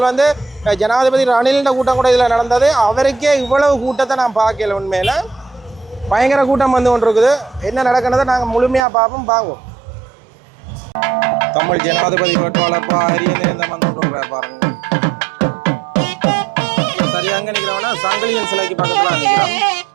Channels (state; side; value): drops out; left; at 8.8 s